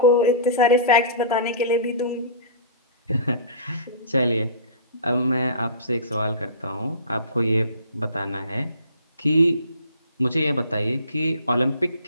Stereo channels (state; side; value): inverted; both; correlation -0.39